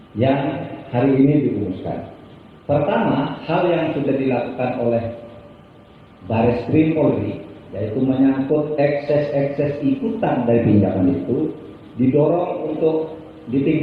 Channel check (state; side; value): identical; both; correlation 1.00